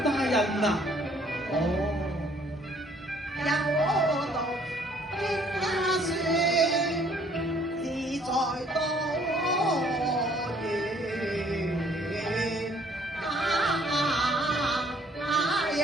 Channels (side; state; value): both; normal; correlation 0.61